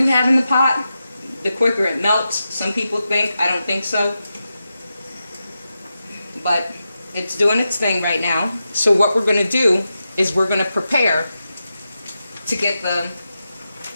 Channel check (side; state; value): both; inverted; correlation -0.90